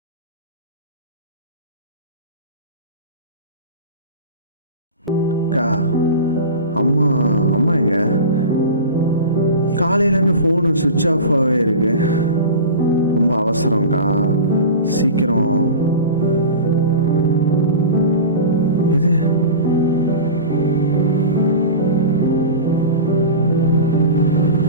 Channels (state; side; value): inverted; both; correlation -0.31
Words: அக்கா, அம்மா அம்மா எங்க? காலையிலேருந்து ஃபோனு சுவிட்ச் ஆஃபாகவே இருக்கு. ரொம்ப அவசரம்க்கா, சீக்கிரம். எது